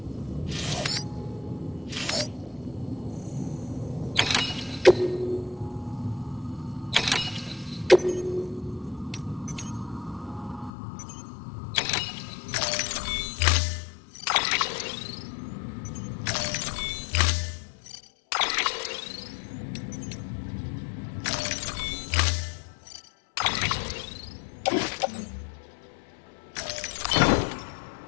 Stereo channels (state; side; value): drops out; right; at 10.7 s